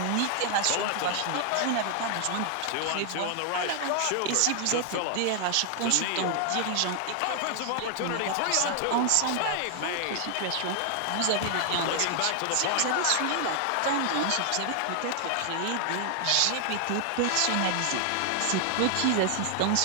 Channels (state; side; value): different; both; correlation 0.00